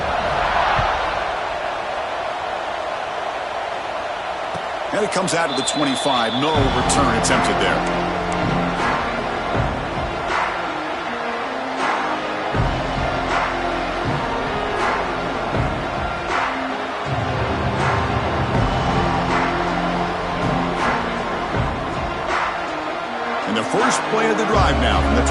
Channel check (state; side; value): identical; both; correlation 1.00